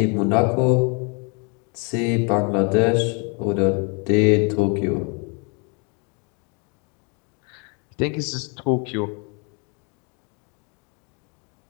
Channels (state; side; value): quieter; right; 34.2 dB